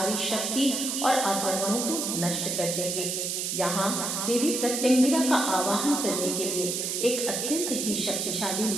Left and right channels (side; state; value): right; noise; hiss, 1 dB below the sound